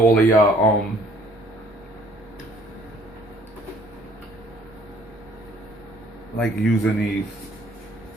all of y'all like using these.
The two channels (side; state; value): both; normal; correlation 0.58